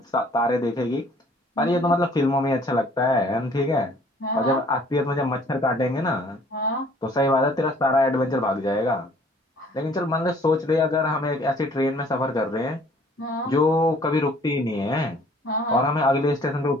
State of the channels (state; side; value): normal; both; correlation 0.56